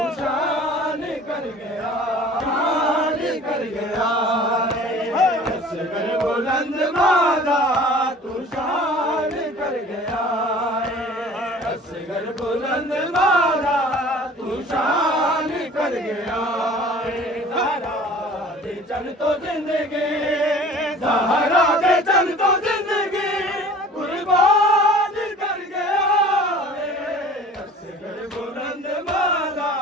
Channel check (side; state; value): both; normal; correlation 0.46